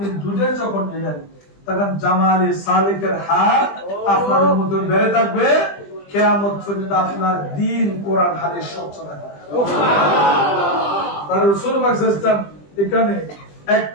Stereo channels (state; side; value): late; right; 20 ms